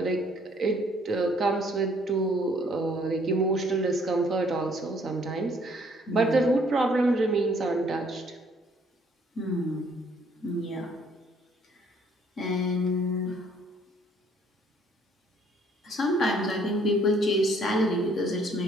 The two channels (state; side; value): normal; both; correlation 0.63